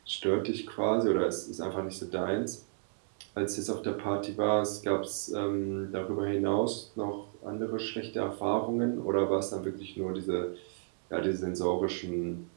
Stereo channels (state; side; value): silent; left; digital silence